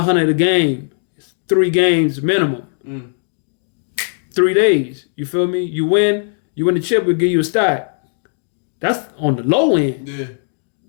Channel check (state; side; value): silent; right; digital silence